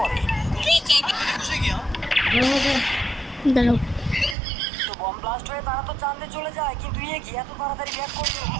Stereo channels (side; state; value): left; drops out; at 4.4 s